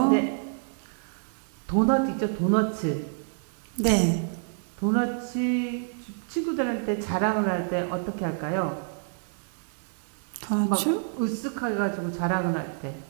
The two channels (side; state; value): left; silent; digital silence